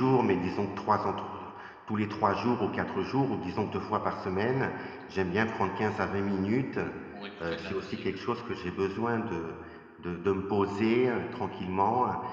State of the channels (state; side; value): identical; both; correlation 1.00